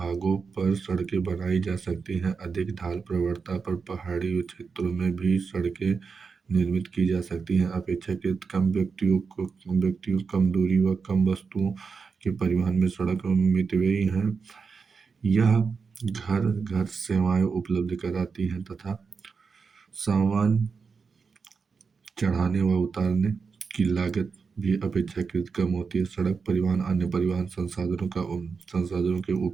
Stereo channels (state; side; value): quieter; left; 5.2 dB